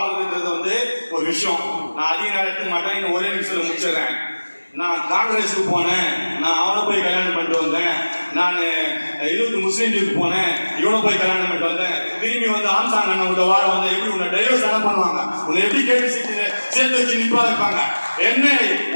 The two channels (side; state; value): both; inverted; correlation -1.00